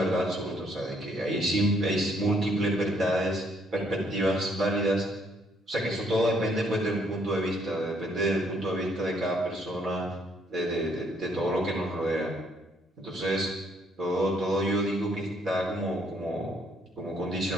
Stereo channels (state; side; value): normal; both; correlation 0.68